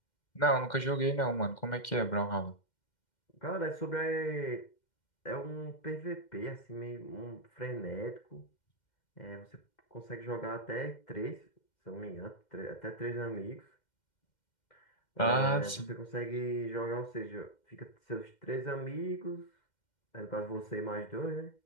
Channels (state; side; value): late; right; 2.1 ms